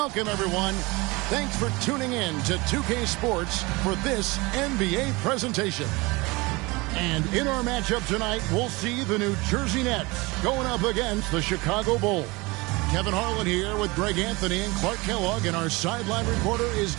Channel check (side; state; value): left; quieter; 24.1 dB